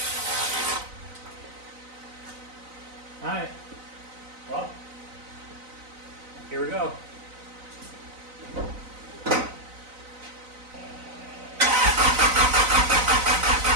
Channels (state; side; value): late; left; 4.0 ms